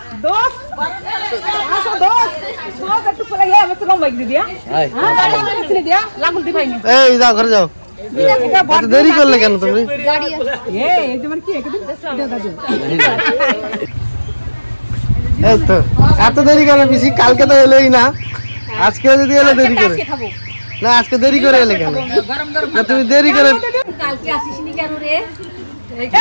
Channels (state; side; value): inverted; both; correlation -1.00